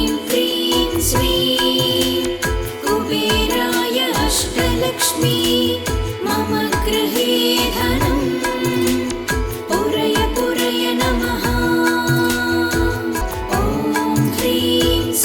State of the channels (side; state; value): both; identical; correlation 1.00